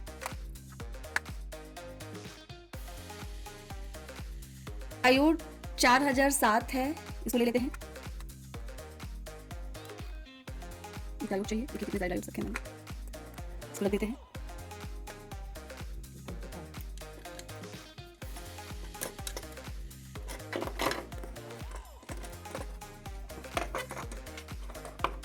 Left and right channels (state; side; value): identical; both; correlation 1.00